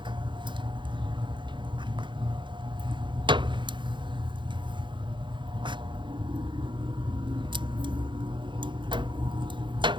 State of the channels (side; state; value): left; late; 0.23 ms